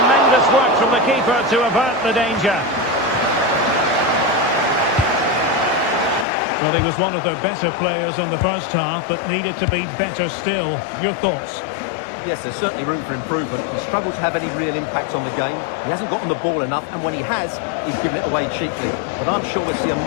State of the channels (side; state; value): right; drops out; at 6.2 s